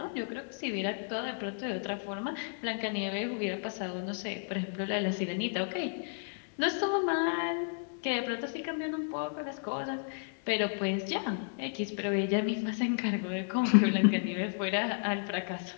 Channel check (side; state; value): right; silent; digital silence